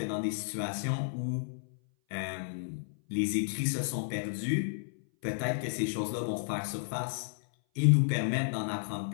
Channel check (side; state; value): right; silent; 56 dB below the other